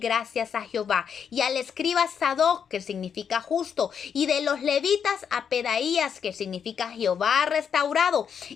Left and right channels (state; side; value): quieter; right; 7.4 dB